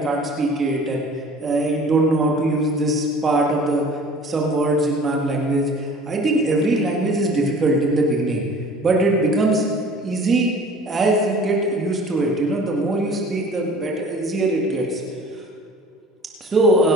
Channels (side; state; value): both; normal; correlation 0.47